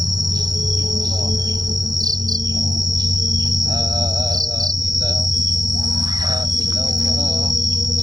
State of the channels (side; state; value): left; late; 0.19 ms